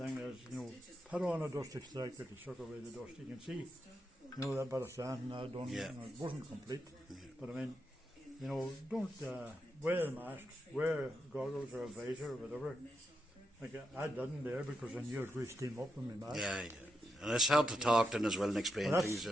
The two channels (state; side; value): normal; both; correlation 0.83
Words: is, you know, put on a dust extractor to suck away the dust. You can see, you know, that bit of sand I done, Yeah. you know, it wasn't complete. But I mean, you know, don't wear a mask, wear goggles or a visor or whatever. Like I didn't there because I knew it would steam up in my mask. yeah, yeah. And it's hard to talk then as well and explain But things.